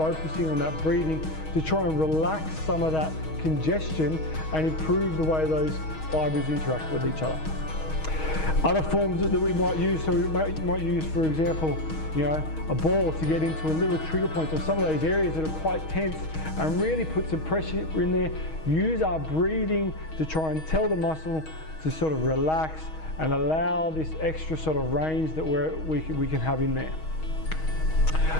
on that breathing to try and relax some of that congestion and improve the way those fibers interact with each other. Other forms that we might use, so we might use, for example, you know, a ball to get into a little trigger point or some of those areas that are quite tense and really put some pressure in there. Use our breathing to try and tell the muscle to sort of relax and allow this extra sort of range that we can have in there.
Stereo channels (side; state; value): right; late; 6.3 ms